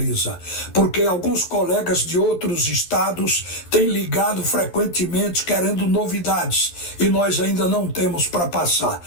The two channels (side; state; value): right; late; 11 ms